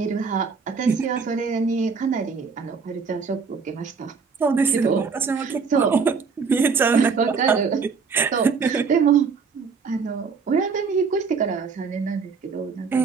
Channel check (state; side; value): quieter; left; 5.3 dB